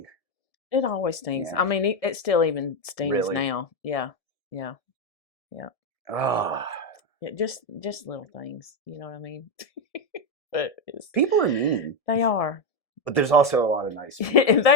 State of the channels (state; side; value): late; right; 1.7 ms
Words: it always stings. Yeah. I mean, it still even stings Really? now. Yeah, yeah, yeah. Oh, Yeah, just little things. You know what I mean? But people are mean, they are. but there's also a lot of nice people.